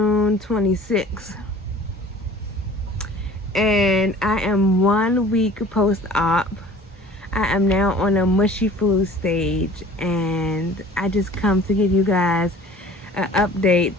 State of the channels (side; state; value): both; normal; correlation 0.47